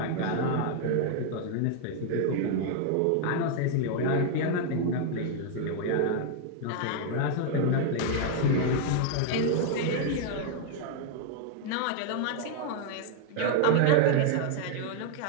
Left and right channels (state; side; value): different; both; correlation 0.00